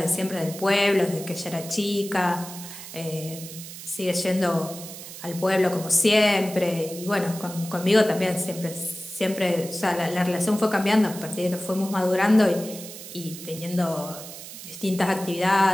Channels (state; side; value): noise; right; hiss, 13 dB below the sound